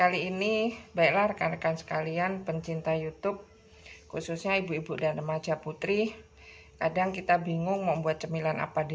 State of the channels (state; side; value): identical; both; correlation 1.00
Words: ini, baiklah rekan-rekan sekalian pencinta YouTube, khususnya ibu-ibu dan remaja putri, kadang kita bingung mau buat cemilan apa